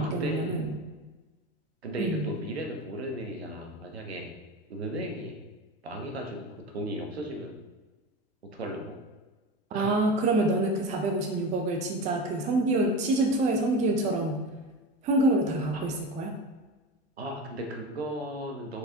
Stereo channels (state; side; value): normal; both; correlation 0.26